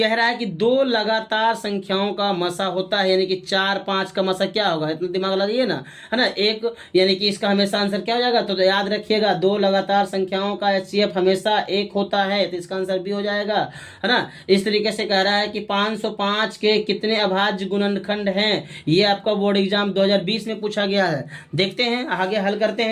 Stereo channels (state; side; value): identical; both; correlation 1.00